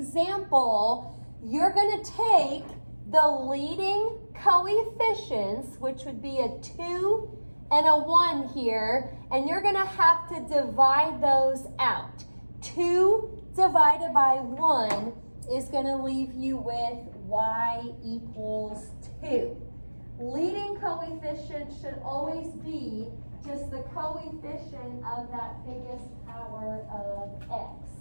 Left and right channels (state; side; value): inverted; both; correlation -1.00